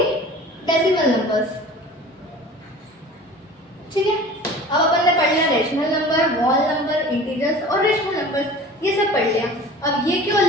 डेसिमल नंबर्स। ठीक है, अब अपन ने पढ़ लिया rational number, wall number, integers और रेशनल नंबर, ये सब पढ़ लिया। अब ये क्यों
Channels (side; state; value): both; normal; correlation 0.41